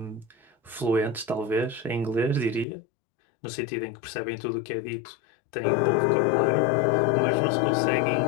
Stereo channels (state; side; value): drops out; right; at 2.7 s